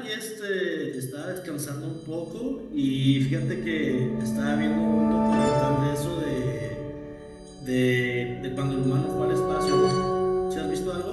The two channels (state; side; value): identical; both; correlation 1.00